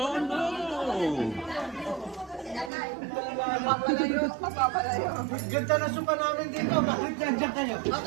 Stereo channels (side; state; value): left; drops out; at 2.7 s